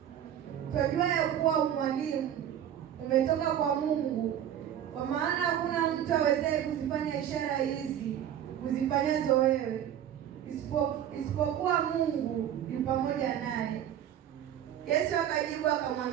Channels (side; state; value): left; quieter; 10.4 dB